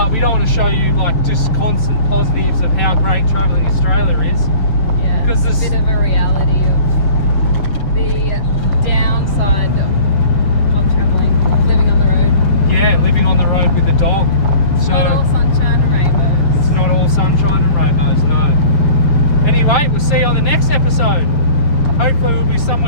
we don't want to show you like just constant positives of how great travelling Australia is. Yeah, because it's a bit of a reality of the downside of travelling, living on the road. Yeah, living on the road with a dog. It's So not all sunshine and rainbows. it's not all sunshine and rainbows, no. Anyway, we'll see you on the next episode. Hopefully we'll be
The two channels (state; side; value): late; right; 6.6 ms